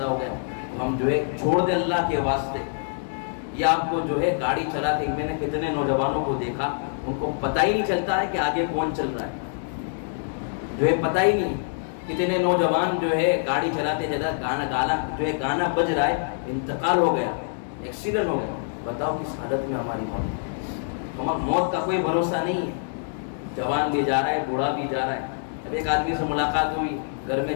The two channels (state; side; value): silent; right; digital silence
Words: ہو گیا۔ ہم جو ہے چھوڑ دیں اللہ کے واسطے۔ یہ آپ کو جو ہے گاڑی چلاتے، میں نے کتنے نوجوانوں کو دیکھا، ان کو پتہ ہی نہیں چلتا ہے کہ آگے کون چل رہا ہے، جو ہے پتہ ہی نہیں۔ کتنے نوجوان جو ہے گاڑی چلاتے گانا بج رہا ہے، انتقال ہو گیا، ایکسیڈنٹ ہو گیا۔ بتاؤ کس حالت میں ہماری موت کا کوئی بھروسہ نہیں ہے۔ جوان بھی جا رہا ہے، بوڑھا بھی جا رہا ہے۔ اب ایک آدمی سے ملاقات ہوئی، گھر میں